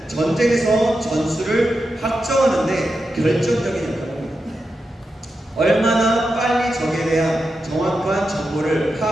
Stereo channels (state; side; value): normal; both; correlation 0.89